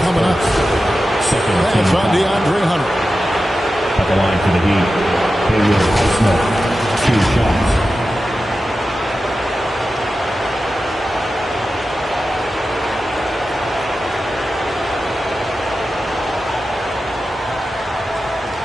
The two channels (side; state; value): both; normal; correlation 0.92